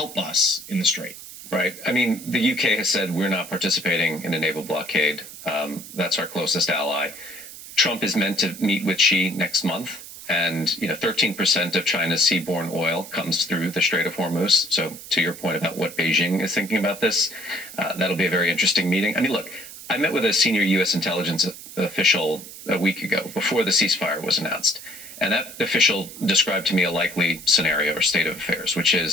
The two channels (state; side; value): noise; right; hiss, 14 dB below the sound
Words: us in the strait. Right. I mean, the UK has said we're not participating in a naval blockade. That's our closest ally. Trump is meant to meet with Xi next month. And, 13% of China's seaborne oil comes through the Strait of Hormuz. So to your point about what Beijing is thinking about this, that'll be a very interesting meeting. I mean, look, I met with a senior U.S. intelligence official a week ago before the ceasefire was announced. And that official described to me a likely scenario or state of affairs, which